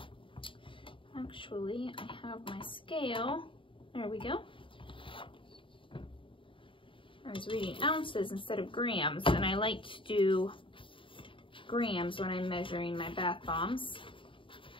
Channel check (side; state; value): right; late; 0.25 ms